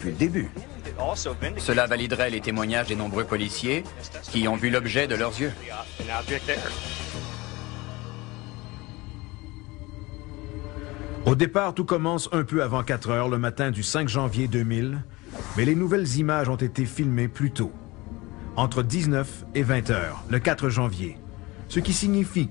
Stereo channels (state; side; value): quieter; right; 22.1 dB